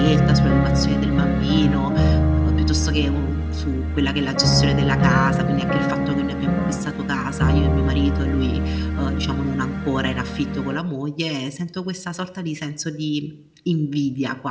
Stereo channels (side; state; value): both; identical; correlation 1.00